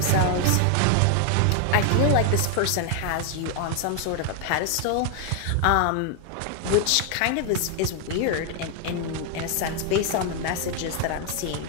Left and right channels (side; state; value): both; different; correlation 0.00